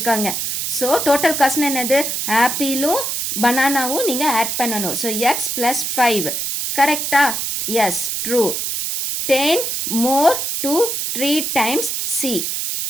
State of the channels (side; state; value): right; noise; hiss, 2 dB below the sound